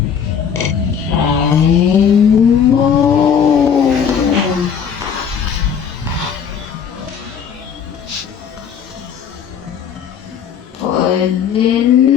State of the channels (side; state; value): right; quieter; 7.5 dB